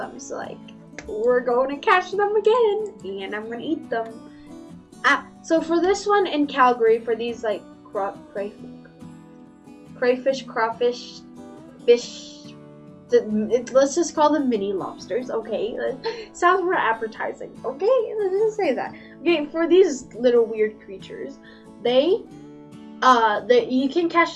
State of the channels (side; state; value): both; identical; correlation 1.00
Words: So like, we're going to catch them again, and I'm gonna eat them. So for this one in Calgary, for these like crayfish, crawfish, fish. Let's just call them mini lobsters, okay? Sounds more appetizing, okay? Let's just say that. Okay, for these little weird creatures, you can catch